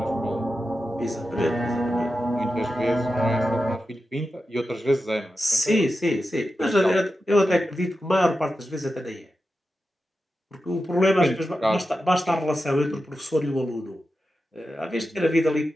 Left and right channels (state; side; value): normal; both; correlation 0.91